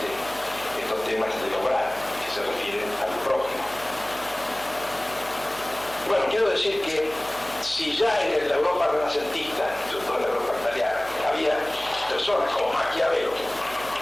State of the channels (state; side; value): noise; right; hum, 20 dB below the sound